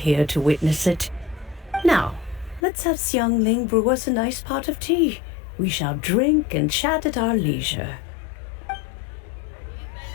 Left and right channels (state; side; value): drops out; right; at 2.6 s